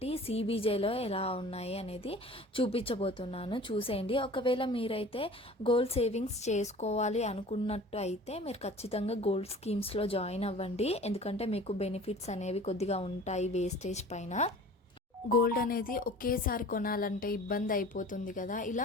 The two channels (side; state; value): both; normal; correlation 0.43